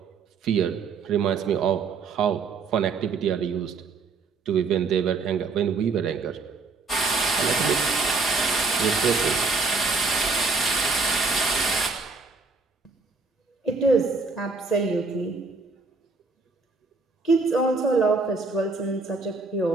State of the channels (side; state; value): left; quieter; 4.2 dB